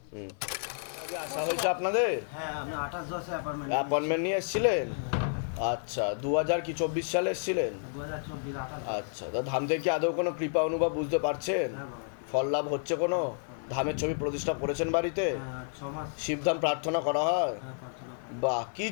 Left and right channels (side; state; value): right; silent; digital silence